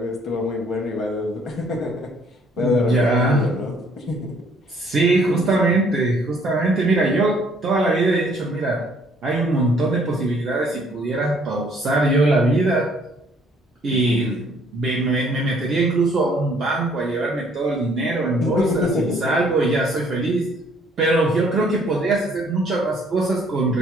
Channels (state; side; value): normal; both; correlation 0.62